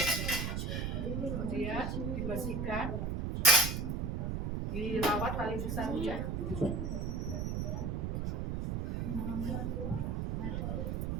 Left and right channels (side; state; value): right; noise; rumble, 1 dB below the sound